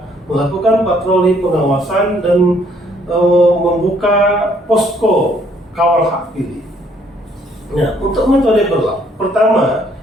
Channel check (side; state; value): both; normal; correlation 0.65